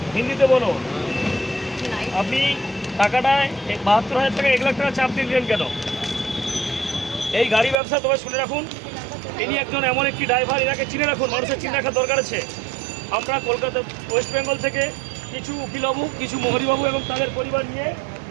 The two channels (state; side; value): drops out; left; at 7.8 s